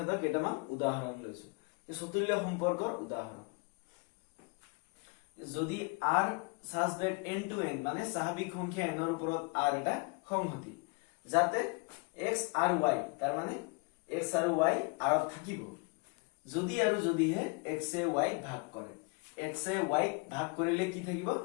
কেইটামান উদাহৰণ লৈছো চতুল্য সম্পৰ্কৰ উদাহৰণ যদি r such that n to n মানে স্বাভাৱিক সংখ্যা n ৰ ওপৰত r এটা সংহতি যাতে x আৰু y তাৰ মানে x আৰু y r ত থাকিব যদি আৰু যদিহে x এ y ভাগ কৰে x এ y ভাগ কৰিলে কি থাকিব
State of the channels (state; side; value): quieter; right; 30.4 dB